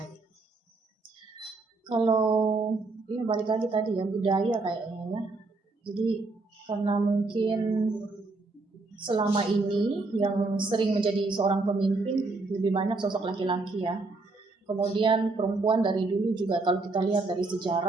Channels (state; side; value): quieter; left; 3.5 dB